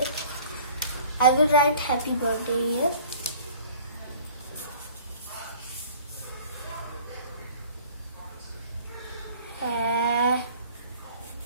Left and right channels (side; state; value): both; inverted; correlation -0.49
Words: I will write happy birthday here.